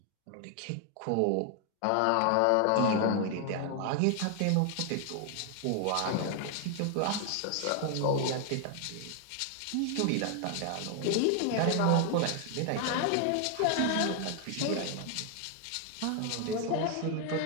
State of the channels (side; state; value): both; different; correlation 0.00